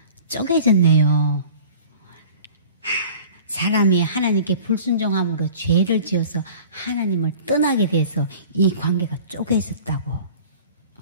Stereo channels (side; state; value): both; inverted; correlation -0.45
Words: 쪼개졌네요. 사람이 하나님께 불순종함으로 죄를 지어서 하나님을 떠나게 돼서 이 관계가 쪼개졌다고.